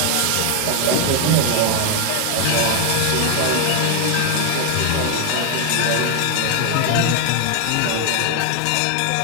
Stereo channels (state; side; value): different; both; correlation 0.00